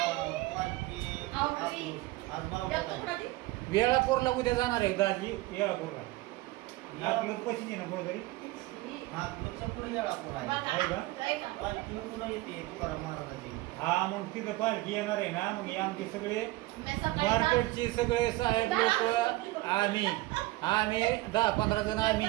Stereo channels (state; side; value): quieter; left; 19.5 dB